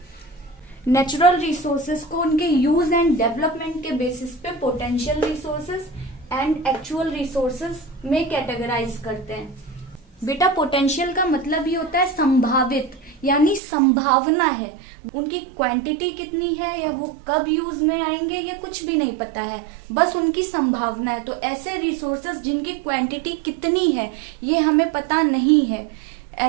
नेचुरल रिसोर्सेज को उनके यूज एंड डेवलपमेंट के बेसिस पे potential resources and actual resources में कैटेगराइज करते हैं। बेटा पोटेंशियल का मतलब ही होता है संभावित, यानी संभावना है। उनकी क्वांटिटी कितनी है या वो कब यूज में आएंगे ये कुछ भी नहीं पता है, बस उनकी संभावना है। तो ऐसे रिसोर्सेज जिनकी क्वांटिटी कितनी है ये हमें पता नहीं है,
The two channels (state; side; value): drops out; left; at 13.6 s